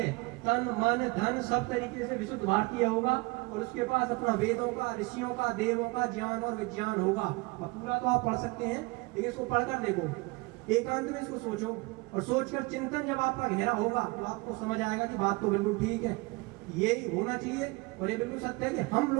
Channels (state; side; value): quieter; left; 25.3 dB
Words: तन मन धन सब तरीके से विशुद्ध भारतीय होगा और उसके पास अपना वेदों का, ऋषियों का, देवों का ज्ञान और विज्ञान होगा। अब पूरा तो आप पढ़ सकते हैं, लेकिन इसको पढ़कर देखो, एकांत में इसको सोचो और सोचकर चिंतन जब आपका गहरा होगा तो आपको समझ आएगा कि बात तो बिल्कुल ठीक है, यही होना चाहिए। और ये बिल्कुल सत्य है कि हम